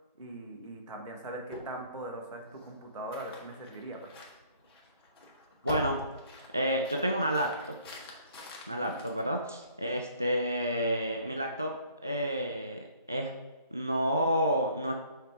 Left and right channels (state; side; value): inverted; both; correlation -0.59